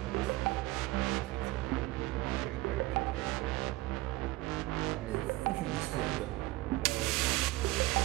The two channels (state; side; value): quieter; left; 18.8 dB